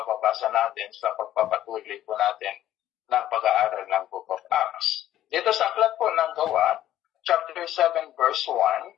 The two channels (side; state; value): right; quieter; 12.7 dB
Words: natin sa pagpapatuloy po natin ng pag-aaral ng Book of Acts. Dito sa aklat po ng Gawa, chapter 7, verse 1,